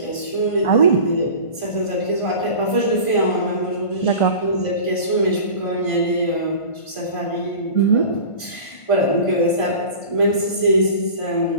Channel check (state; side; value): late; right; 1.5 ms